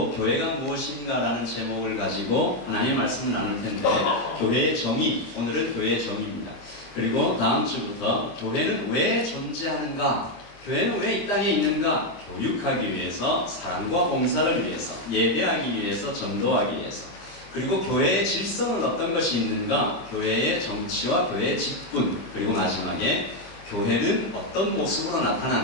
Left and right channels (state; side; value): late; right; 25 ms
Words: 교회가 무엇인가라는 제목을 가지고 하나님의 말씀을 나눌 텐데, 교회의 정의, 오늘은 교회의 정의입니다. 그리고 다음 주부터 교회는 왜 존재하는가, 교회는 왜 이 땅에 있는가, 교육하기 위해서, 사랑과 봉사를 위해서, 예배하기 위해서, 전도하기 위해서, 그리고 교회의 질서는 어떤 것이 있는가, 교회의 정치와 교회의 직분, 그리고 마지막에 교회는 어떤 모습으로